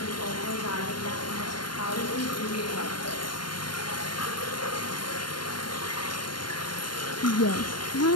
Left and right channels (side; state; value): right; late; 0.72 ms